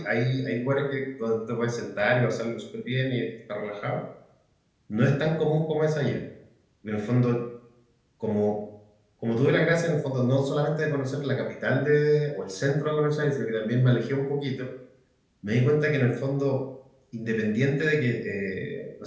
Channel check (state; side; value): identical; both; correlation 1.00